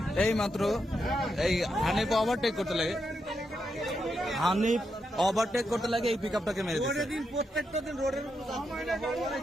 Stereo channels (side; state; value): both; normal; correlation 0.83